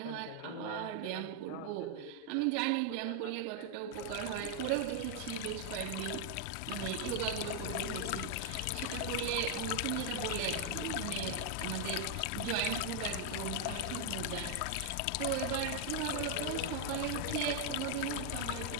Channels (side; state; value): both; different; correlation 0.00